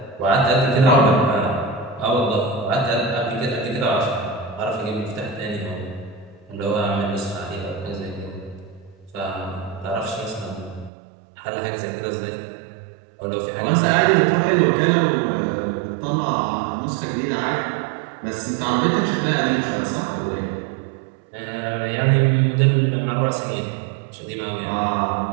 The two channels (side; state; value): left; drops out; at 10.9 s